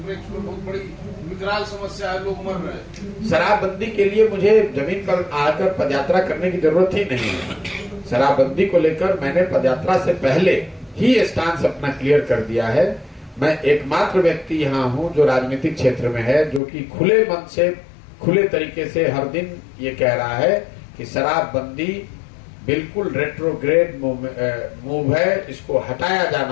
में बहुत बड़ी विकराल समस्या है, लोग मर रहे हैं। शराबबंदी के लिए मुझे जमीन पर आकर पदयात्रा करने की जरूरत ही नहीं है। शराबबंदी को लेकर मैंने पदयात्रा से पहले ही स्टांस अपना क्लियर कर दिया है। मैं एकमात्र व्यक्ति यहाँ हूँ जो राजनीतिक क्षेत्र में है, जो कि खुले मन से, खुले तरीके से हर दिन ये कह रहा है कि शराबबंदी बिल्कुल रेट्रोग्रेड मूव है, इसको हटाया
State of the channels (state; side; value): drops out; right; at 16.6 s